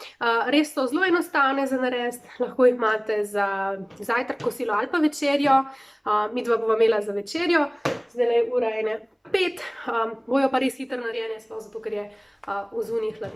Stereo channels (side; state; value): both; identical; correlation 1.00